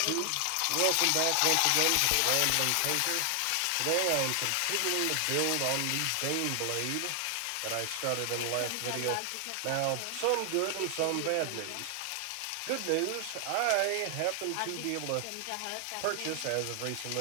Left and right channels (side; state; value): both; different; correlation 0.00